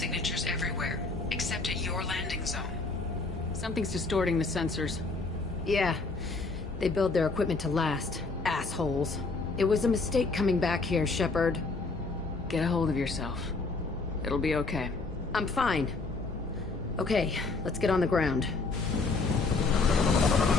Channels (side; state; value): right; quieter; 3.8 dB